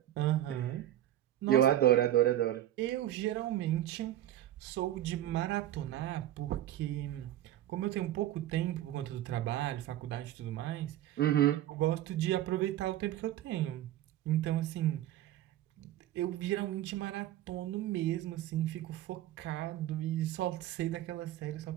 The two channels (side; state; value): left; quieter; 12.9 dB